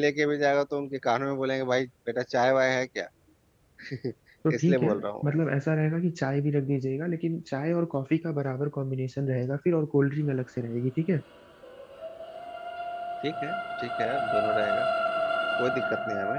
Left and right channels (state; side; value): identical; both; correlation 1.00